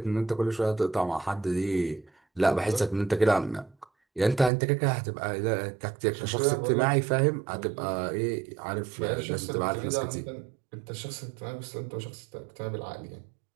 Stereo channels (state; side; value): drops out; left; at 4.5 s